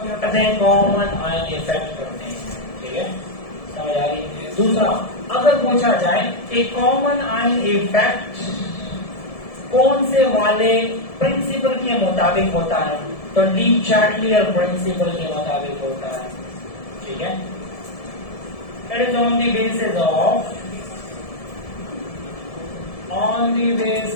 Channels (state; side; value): late; right; 1.7 ms